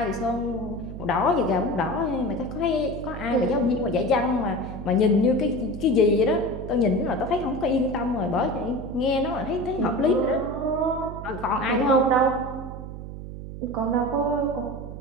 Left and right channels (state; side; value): noise; right; hum, 10 dB below the sound